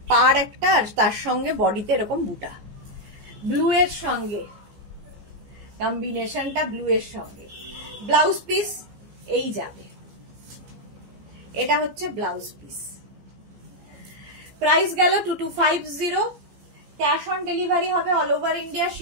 পার একটা, আর তার সঙ্গে বডিতে এরকম বুটা, ব্লু এর সঙ্গে কম্বিনেশনটা, ব্লু এর সঙ্গে। ব্লাউজ পিস এই যাবে, এটা হচ্ছে ব্লাউজ পিস। প্রাইস গেল 2250। ক্যাশ অন ডেলিভারি হবে all over India,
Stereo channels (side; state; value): left; late; 15 ms